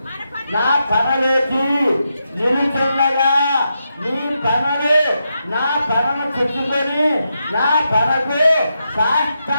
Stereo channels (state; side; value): inverted; both; correlation -0.85